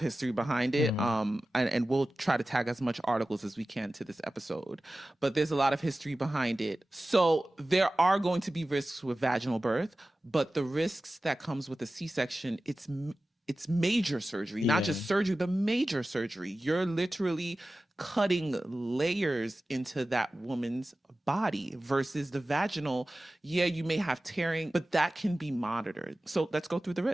behind it, and we'll try to tag as much articles as we can to this episode, but there's a lot of history behind it. So there are going to be risks with vaginal birth, but the risks that comes with a C-section, it's major surgery, not just surgery, but major surgery. You're literally cutting layers into that woman's body versus the vaginal. Yeah, you may have tearing, but that can be monitored. So let's go through the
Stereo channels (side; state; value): both; normal; correlation 0.96